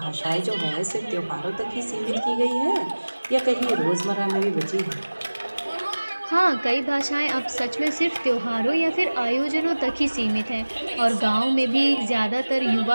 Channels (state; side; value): inverted; both; correlation -1.00